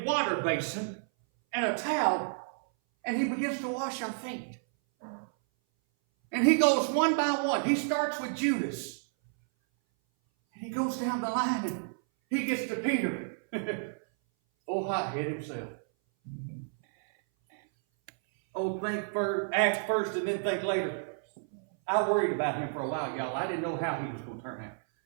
water basin and a towel and he begins to wash our feet. And he goes one by one. He starts with Judas. And he goes down the line and he gets to Peter. Oh, hothead himself. Oh, act first and then think later. I worried about him for a while, y'all. I didn't know how he was going to turn out.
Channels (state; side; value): silent; left; 57 dB below the other